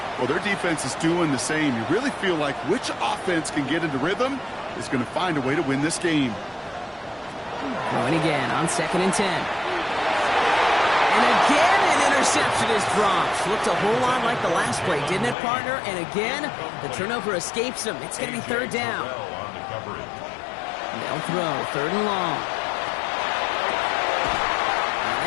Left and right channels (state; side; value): drops out; right; at 15.4 s